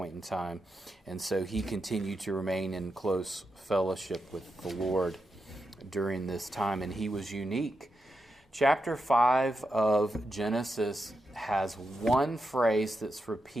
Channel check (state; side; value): normal; both; correlation 0.86